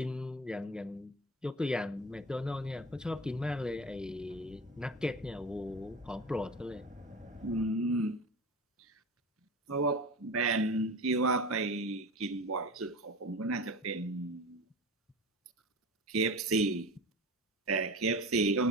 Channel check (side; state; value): both; normal; correlation 0.31